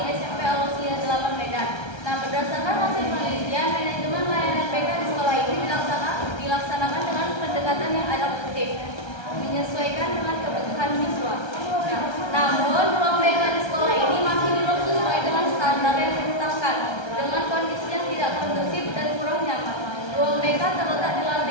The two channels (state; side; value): late; right; 1.3 ms